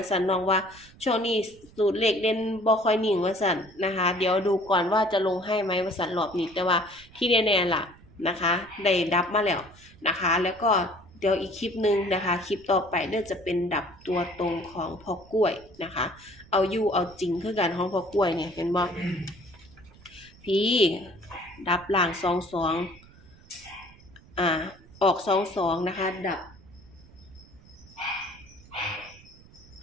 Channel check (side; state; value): right; noise; rumble, 24 dB below the sound